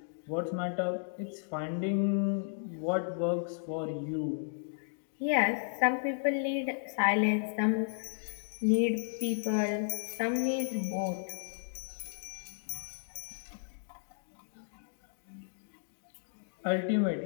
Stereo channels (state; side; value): silent; right; digital silence